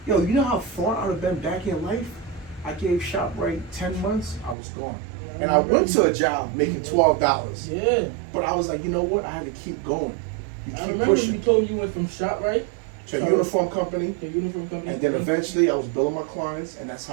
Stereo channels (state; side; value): drops out; left; at 4.5 s